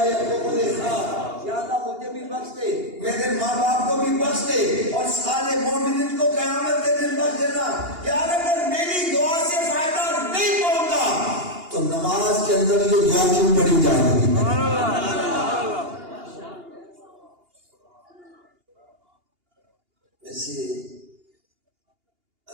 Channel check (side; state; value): left; late; 2.8 ms